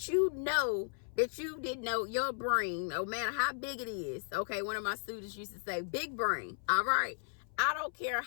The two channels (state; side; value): silent; right; 54 dB below the other